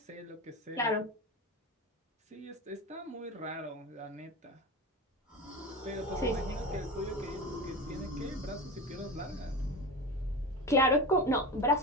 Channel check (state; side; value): normal; both; correlation 0.27